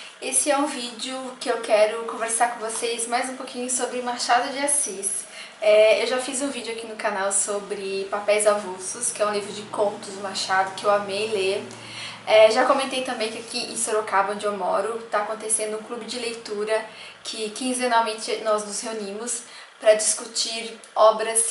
Esse é um vídeo que eu quero conversar com vocês mais um pouquinho sobre Machado de Assis. Eu já fiz um vídeo aqui no canal sobre Papéis Avulsos, que é um livro de contos do Machado que eu amei ler. Já comentei também que aqui em Sorocaba, onde eu moro, está acontecendo um clube de leitura que quinzenalmente nós nos reunimos para discutir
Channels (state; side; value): identical; both; correlation 1.00